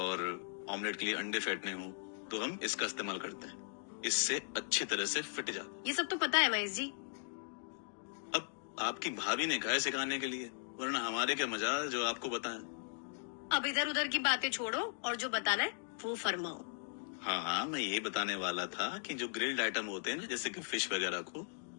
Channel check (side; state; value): right; silent; digital silence